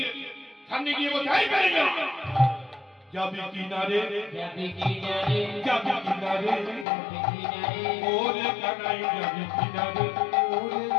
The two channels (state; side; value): drops out; right; at 6.9 s